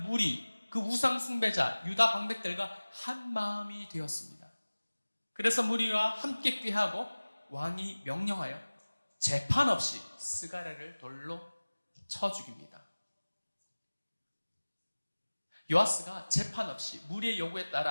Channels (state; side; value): inverted; both; correlation -1.00